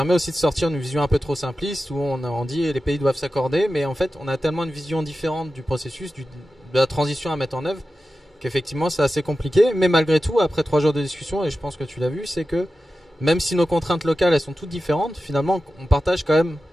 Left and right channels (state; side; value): normal; both; correlation 0.93